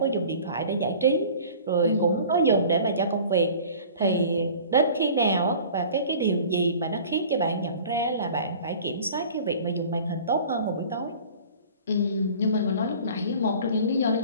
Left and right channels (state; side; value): inverted; both; correlation -0.44